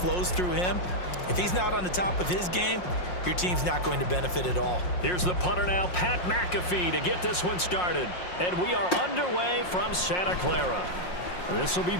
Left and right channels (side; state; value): right; late; 5.6 ms